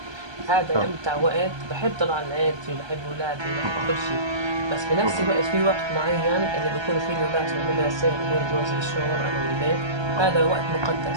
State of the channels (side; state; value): left; late; 1.3 ms